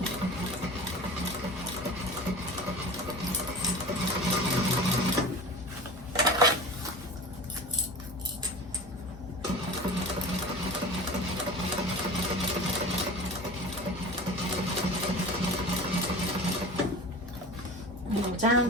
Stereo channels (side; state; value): both; normal; correlation 0.35